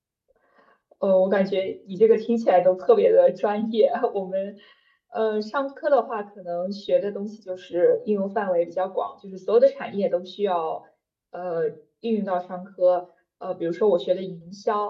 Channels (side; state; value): both; identical; correlation 1.00